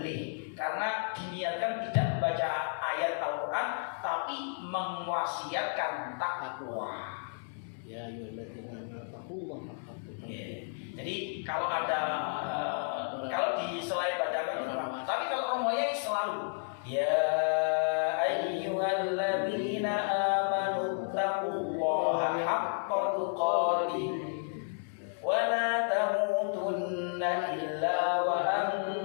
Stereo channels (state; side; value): silent; right; digital silence